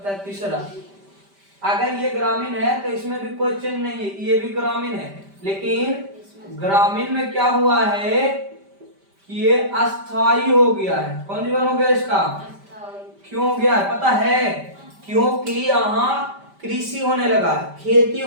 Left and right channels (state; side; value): late; left; 5.1 ms